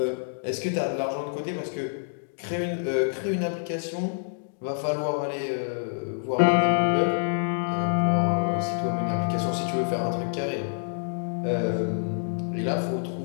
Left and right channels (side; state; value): right; silent; digital silence